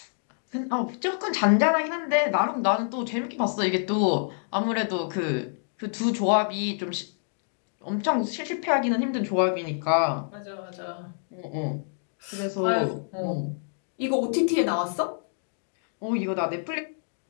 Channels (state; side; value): silent; right; digital silence